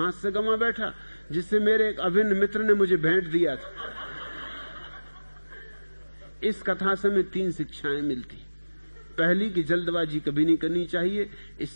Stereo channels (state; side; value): inverted; both; correlation -1.00